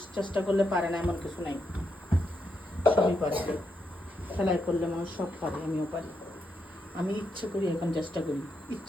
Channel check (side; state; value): both; normal; correlation 0.82